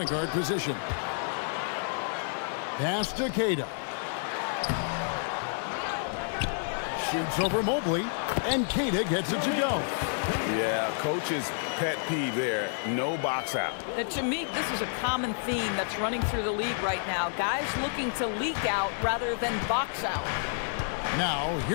guard position. Pass to Queta. Shoots over Mobley. And Queta gets it to go. Yeah, coach's pet peeve there. No box out. And to me, this is a common theme that's running through the league right now. Guys looking to leak out rather than box out. Now,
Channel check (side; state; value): right; silent; digital silence